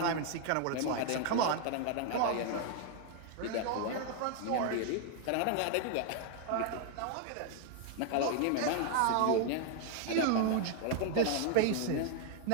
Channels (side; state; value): both; different; correlation 0.00